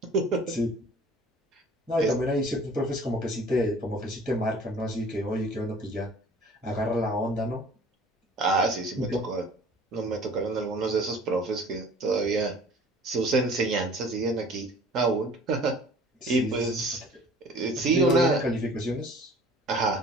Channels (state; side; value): normal; both; correlation 0.49